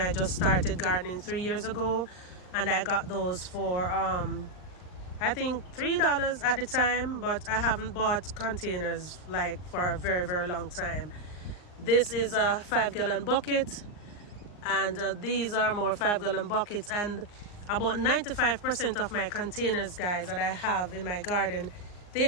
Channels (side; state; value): right; late; 39 ms